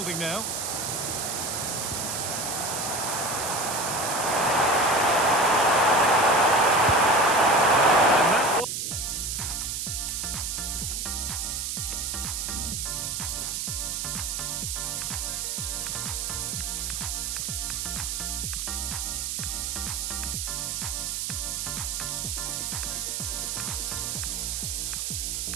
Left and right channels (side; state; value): right; noise; hiss, 2 dB below the sound